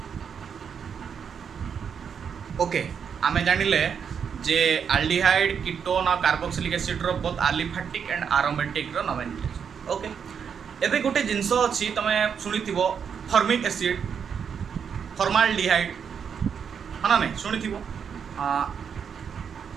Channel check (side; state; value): left; quieter; 7.1 dB